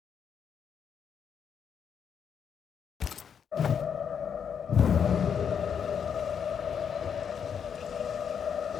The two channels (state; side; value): quieter; right; 7.5 dB